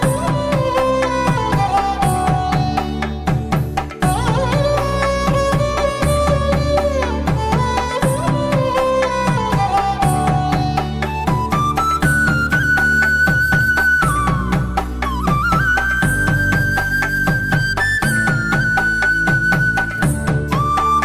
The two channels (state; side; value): identical; both; correlation 1.00